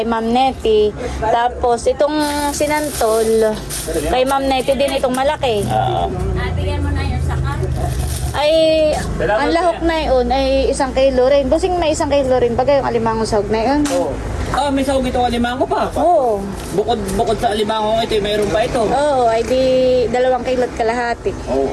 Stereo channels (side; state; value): both; identical; correlation 1.00